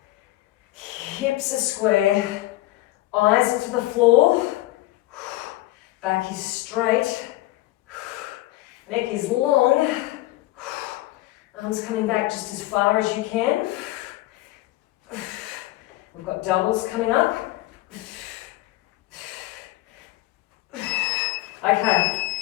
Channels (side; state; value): right; quieter; 17.3 dB